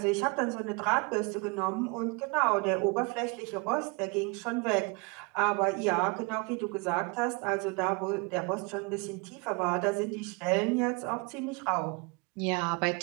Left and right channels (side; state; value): left; quieter; 29.9 dB